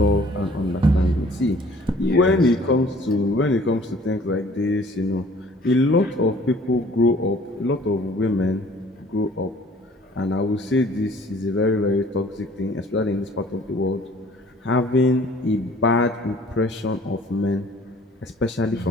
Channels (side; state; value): both; normal; correlation 0.53